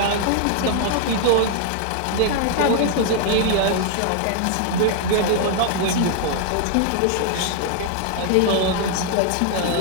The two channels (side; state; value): both; different; correlation 0.00